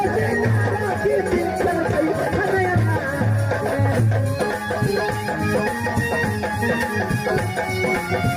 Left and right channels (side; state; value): both; identical; correlation 1.00